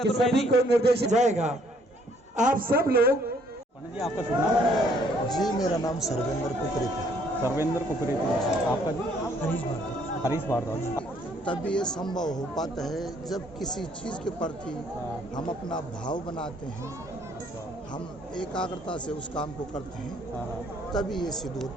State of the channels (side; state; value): both; normal; correlation 0.64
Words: सभी को निर्देशित जाएगा। आप सब लोग। जी आपका शुभ नाम? जी मेरा नाम सर्वेंद्र कुकरेती है। सर्वेंद्र कुकरेती। आपका जी? हरीश भारद्वाज। तब ये संभव हो पाता है जब किसी चीज़ के प्रति हम अपना भाव बनाते हैं, हम एकाग्रता से उस काम को करते हैं, तभी ये सिद्ध हो